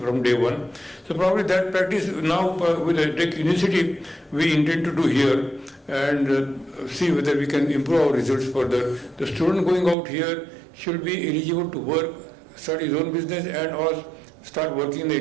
from day one. So probably that practice now with the Tech Initiative we intend to do here, and see whether we can improve our results further. The student going out here should be eligible to work, start his own business, and or start working in the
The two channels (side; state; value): left; drops out; at 10.0 s